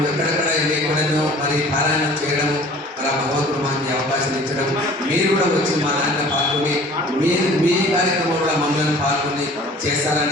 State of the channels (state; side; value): normal; both; correlation 0.48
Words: ఎక్కడెక్కడ ఎక్కడో మరి పారాయణం చేయడము మరి భగవంతుడు మాకు అవకాశం ఇచ్చడం, మీరు కూడా వచ్చి మా దాంట్లో పాల్గొని మీ కార్యక్రమంలో మమ్మల్ని పాల్గొని